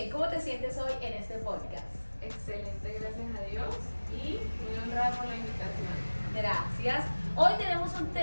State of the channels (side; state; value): both; inverted; correlation -1.00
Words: ¿Cómo te sientes hoy en este podcast? Excelente, gracias a Dios y muy honrada por la invitación. Gracias. Hoy tenemos un